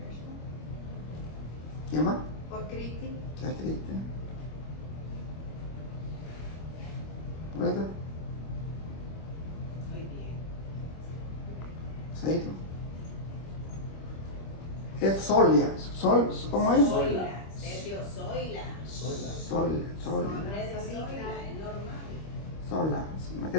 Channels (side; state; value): right; late; 25 ms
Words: ¿Quién más? Por Cristi. ¿Qué es Cristi? ¿Puede? Muy bien. Seito. Es Solia. ¿Cómo es? Zoila, Sergio Zoila. Solia. Nombre de Zoila, es normal. Sola. Es que